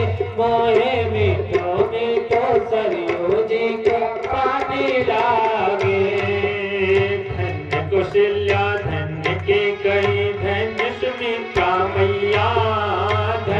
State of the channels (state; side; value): identical; both; correlation 1.00